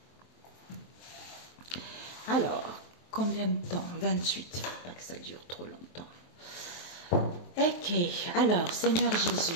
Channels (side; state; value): right; late; 23 ms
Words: Alors, combien de temps? 28. Il ne faut pas que ça dure trop longtemps. Ok. Alors, Seigneur Jésus,